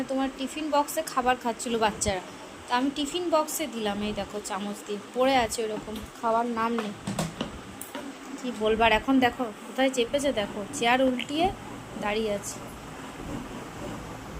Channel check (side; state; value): both; identical; correlation 1.00